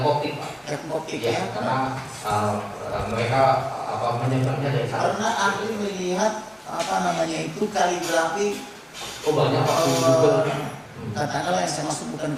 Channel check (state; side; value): identical; both; correlation 1.00